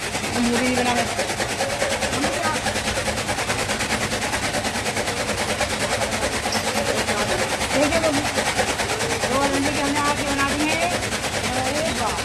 मुँह भी नहीं बना है। देखिए गोवर्धन जी की हमने आँखें बना दी हैं।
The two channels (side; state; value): both; identical; correlation 1.00